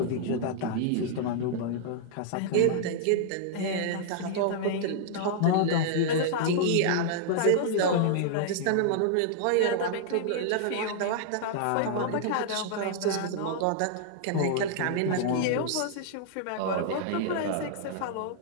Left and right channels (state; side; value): different; both; correlation -0.01